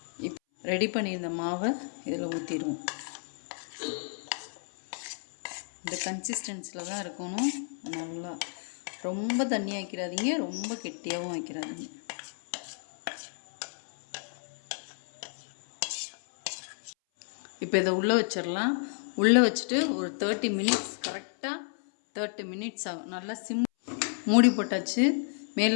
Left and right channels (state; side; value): silent; right; 57 dB below the other